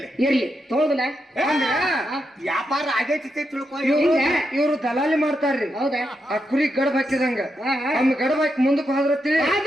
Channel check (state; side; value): normal; both; correlation 0.84